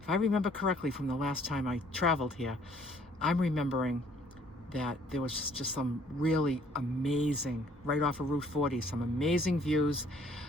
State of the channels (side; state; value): both; normal; correlation 0.61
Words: If I remember correctly from the last time I traveled here, I'm remembering that there was just some really amazing, right off of Route 40, some amazing views,